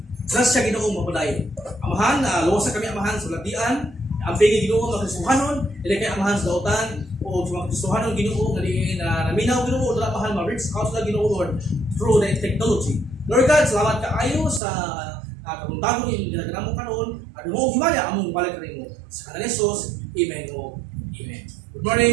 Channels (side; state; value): left; drops out; at 14.6 s